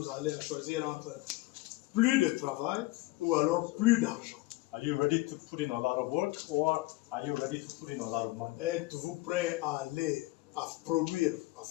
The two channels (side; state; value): right; quieter; 20.0 dB